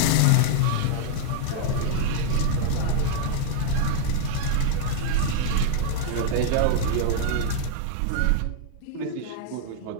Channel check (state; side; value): different; both; correlation -0.01